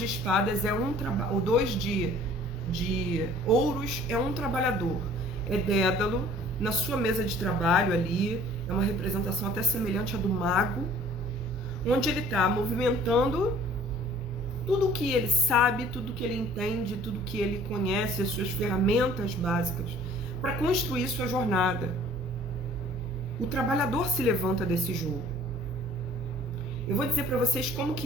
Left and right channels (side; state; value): both; normal; correlation 0.52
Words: espadas é o 2 de ouros é um trabalhador. É Dédalo na sua mesa de trabalho ali, é uma representação até semelhante à do mago, onde ele está movimentando tudo o que ele sabe, tudo o que ele entende, tudo o que ele conhece, as suas ferramentas básicas, para construir sua jornada. O trabalhador se levanta desse jogo. Eu vou dizer para vocês como